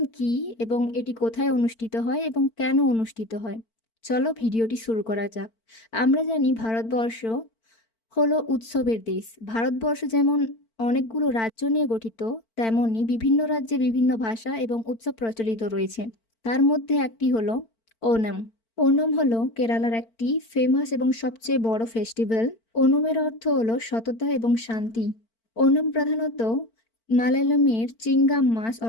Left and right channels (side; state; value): right; late; 4.5 ms